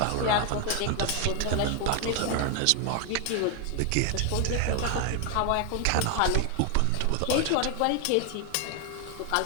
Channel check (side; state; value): both; different; correlation 0.00